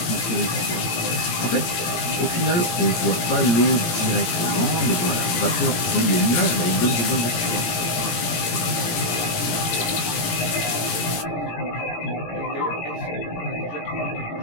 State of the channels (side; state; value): right; late; 17 ms